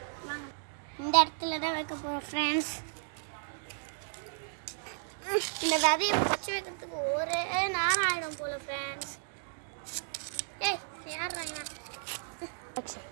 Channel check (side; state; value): left; silent; digital silence